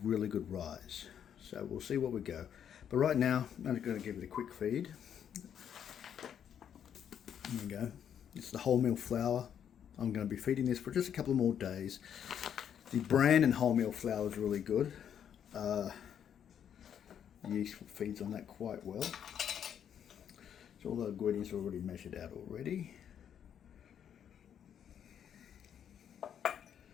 good rise. So we'll see what we go. But right now I'm just going to give it a quick feed. There we go. It's the wholemeal flour. I'm going to be feeding this for just a couple more days. The bran and wholemeal flour is really good. Yeast feeds on that quite well. So all the ingredients are already measured out already. A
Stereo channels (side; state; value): right; quieter; 8.9 dB